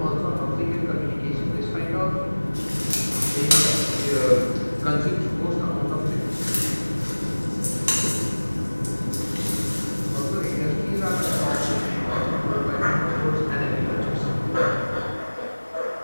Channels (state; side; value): inverted; both; correlation -1.00